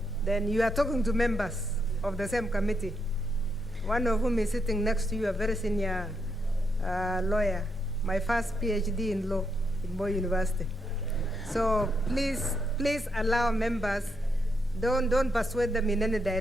then you are talking to members of the same committee, one of whom is sitting next to you, a very senior lawyer, my first PhD in law in Moi University. So please allow members, don't persuade them in any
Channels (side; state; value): both; normal; correlation 0.80